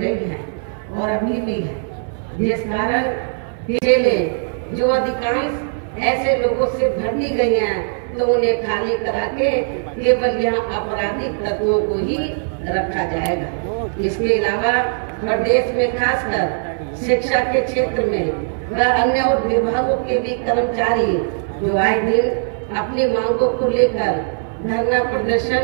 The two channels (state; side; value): silent; left; 63 dB below the other